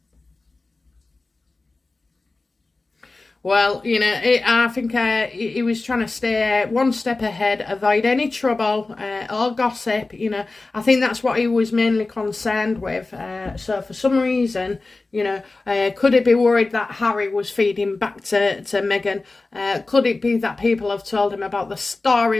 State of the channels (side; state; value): right; quieter; 3.4 dB